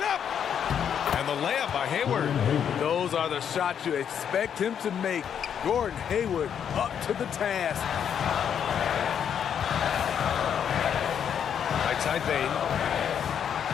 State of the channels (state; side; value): quieter; right; 8.3 dB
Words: up. And the layup by Hayward. Those are the shots you expect him to make. Gordon Hayward up to the task. Right side Bain.